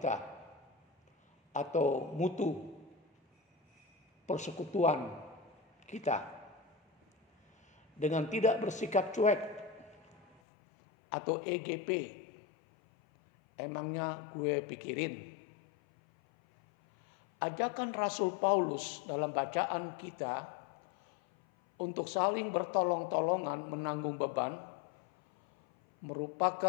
atau mutu persekutuan kita dengan tidak bersikap cuek atau EGP. Emangnya gue pikirin. Ajakan Rasul Paulus dalam bacaan kita untuk saling bertolong-tolongan menanggung beban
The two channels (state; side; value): drops out; right; at 10.4 s